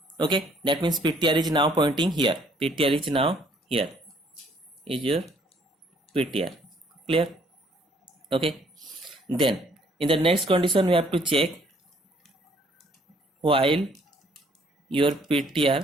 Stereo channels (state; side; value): normal; both; correlation 0.63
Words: Okay, that means ptr is now pointing here. Ptr is now here. Is your ptr. Clear? Okay. Then in the next condition we have to check while your